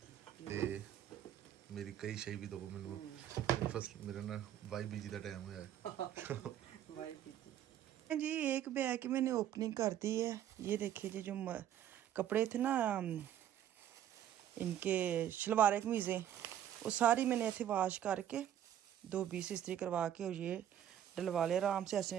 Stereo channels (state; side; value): quieter; left; 11.0 dB